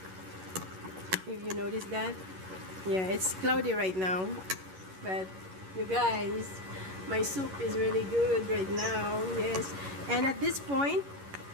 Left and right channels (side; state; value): left; late; 11 ms